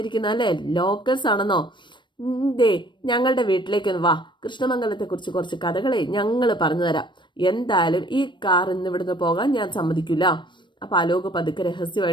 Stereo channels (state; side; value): late; right; 0.22 ms